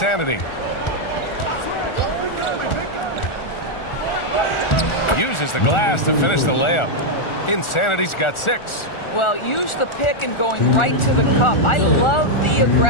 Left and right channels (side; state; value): right; late; 1.4 ms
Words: Uses the glass to finish the layup. Insanity's got 6. Well, use the pick and going right to the cup. I love the